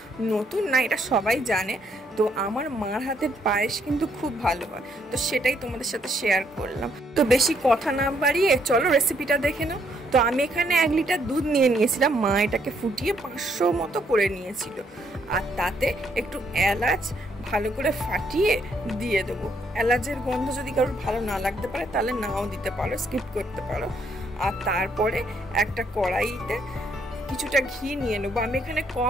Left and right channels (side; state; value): both; normal; correlation 0.71